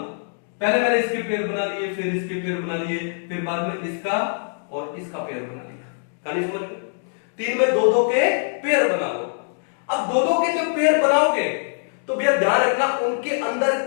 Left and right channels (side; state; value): right; silent; digital silence